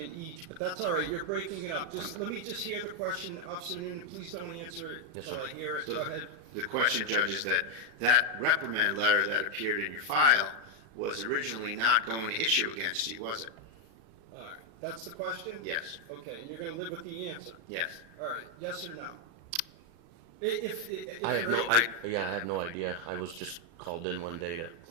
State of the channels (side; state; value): left; late; 35 ms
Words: each, but that's all right, you're breaking it up. Let me just hear the question, Officer Nunan, please don't answer it Yes, until I sir. hear it, So go ahead. The question, Judge, is that reprimand letter that appeared in your file was originally not going to issue against you, was it? All right, that's the question? Yes. Okay, and you're gonna live with the answer? Yes. All right, yes or no? If I have you're no, able- I have no idea. I was just called in one day to